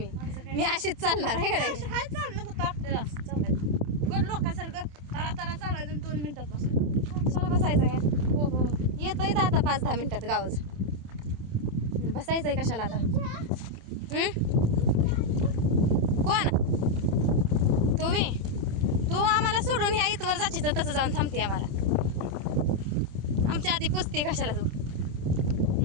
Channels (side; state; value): left; late; 27 ms